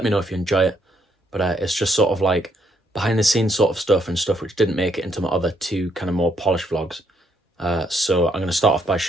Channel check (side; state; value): both; normal; correlation 0.72